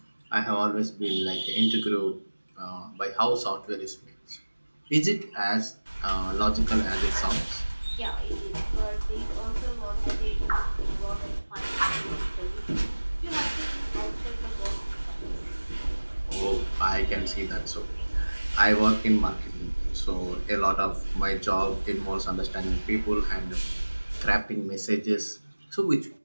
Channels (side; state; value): both; inverted; correlation -1.00